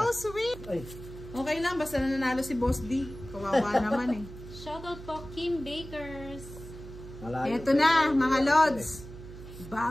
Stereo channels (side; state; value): right; noise; hum, 14 dB below the sound